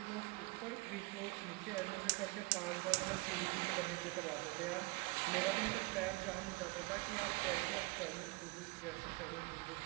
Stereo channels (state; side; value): quieter; left; 25.0 dB